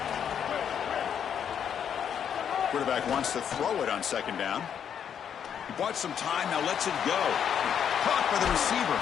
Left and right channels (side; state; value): right; quieter; 8.3 dB